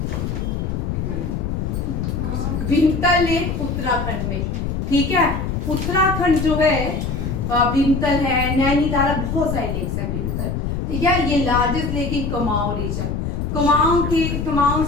भीमतल लेक उत्तराखंड में, ठीक है, उत्तराखंड जो है भीमतल है, नैनीताल, बहुत सारे लेक्स है भीमतल, ठीक है, ये largest lake in Kumaon region. Kumaon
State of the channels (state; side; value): noise; left; rumble, 2 dB below the sound